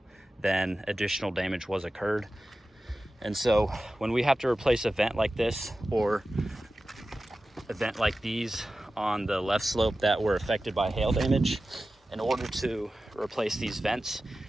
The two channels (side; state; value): both; normal; correlation 0.94